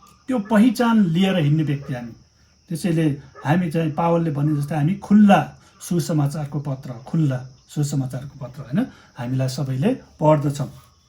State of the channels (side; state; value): both; identical; correlation 1.00